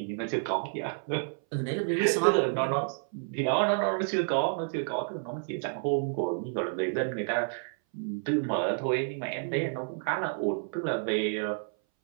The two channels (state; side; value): silent; left; 58 dB below the other